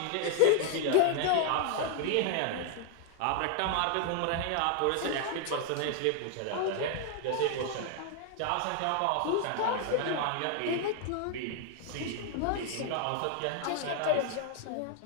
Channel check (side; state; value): both; different; correlation 0.00